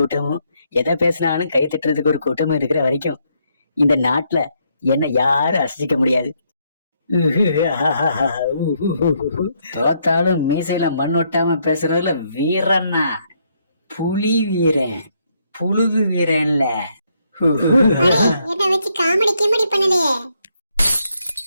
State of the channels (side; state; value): both; inverted; correlation -0.74